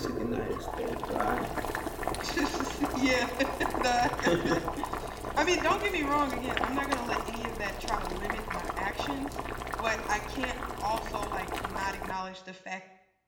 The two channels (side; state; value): both; identical; correlation 1.00